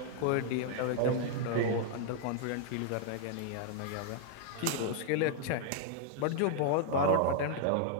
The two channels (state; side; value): different; both; correlation 0.00